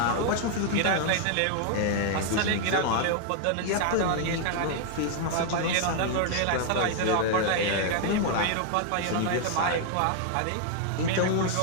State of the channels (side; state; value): both; different; correlation 0.00